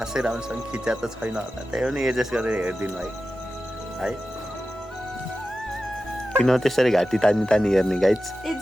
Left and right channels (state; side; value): normal; both; correlation 0.93